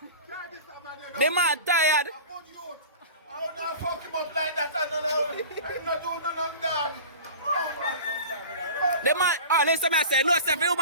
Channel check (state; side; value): inverted; both; correlation -0.37